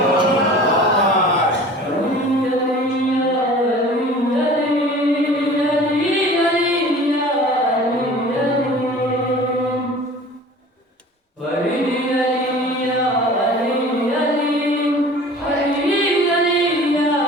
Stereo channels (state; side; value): normal; both; correlation 0.43